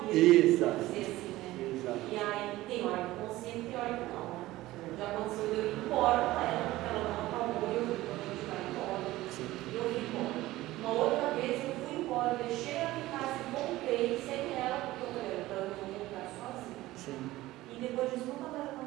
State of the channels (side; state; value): left; quieter; 17.1 dB